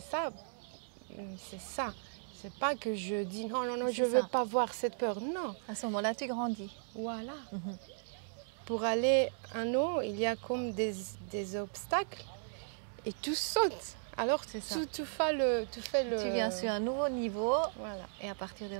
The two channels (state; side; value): silent; left; digital silence